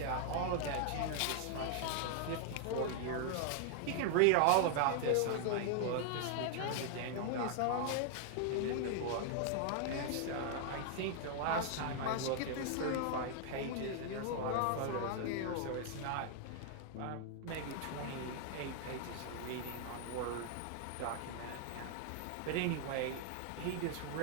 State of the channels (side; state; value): both; different; correlation 0.00